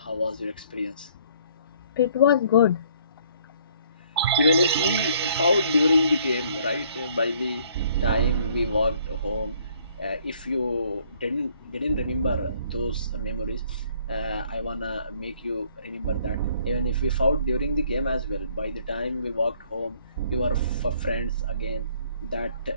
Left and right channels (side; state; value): both; inverted; correlation -0.61